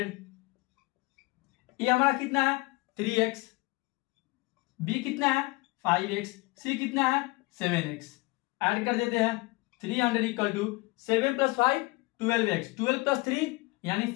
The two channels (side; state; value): right; quieter; 23.6 dB